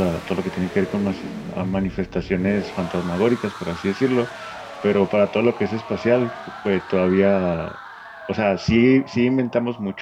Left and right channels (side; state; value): both; identical; correlation 1.00